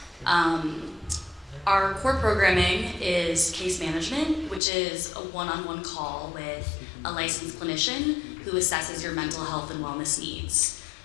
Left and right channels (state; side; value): drops out; right; at 4.6 s